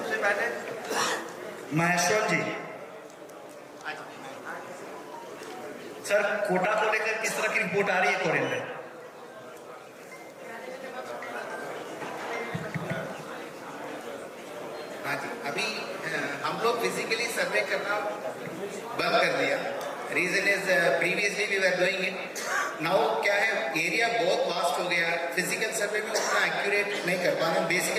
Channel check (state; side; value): identical; both; correlation 1.00